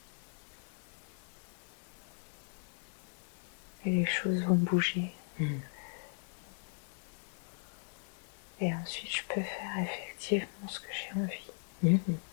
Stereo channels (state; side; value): silent; right; 53 dB below the other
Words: les choses vont bouger. Et ensuite, je peux faire effectivement ce que j'ai envie.